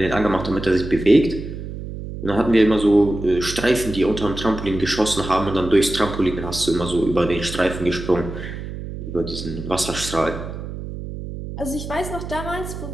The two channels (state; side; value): noise; right; hum, 9 dB below the sound